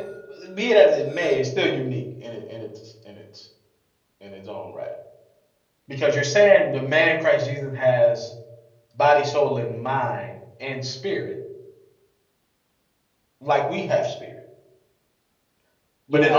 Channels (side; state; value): both; identical; correlation 1.00